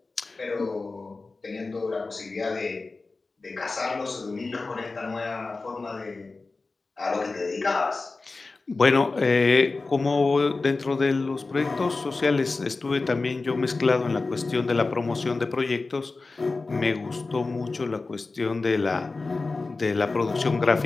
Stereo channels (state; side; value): quieter; right; 3.7 dB